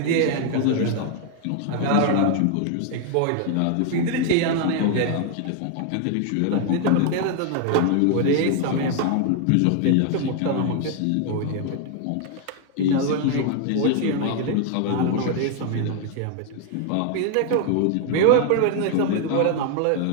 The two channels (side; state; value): both; different; correlation 0.00